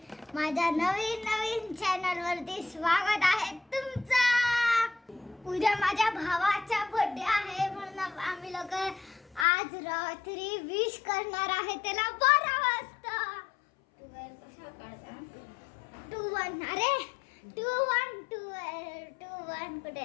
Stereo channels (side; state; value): right; drops out; at 9.5 s